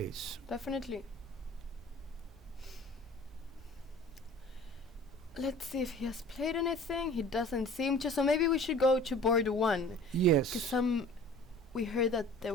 Definitely. Let's see if he has played anything. He doesn't seem to. So maybe we should go to board 1. Yes. Because we heard that there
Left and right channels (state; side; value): normal; both; correlation 0.45